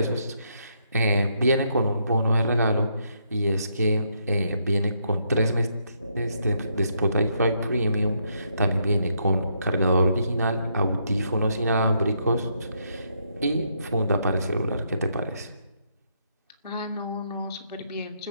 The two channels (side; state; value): both; inverted; correlation -0.76